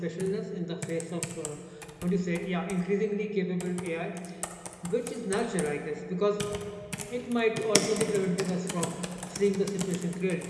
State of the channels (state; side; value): identical; both; correlation 1.00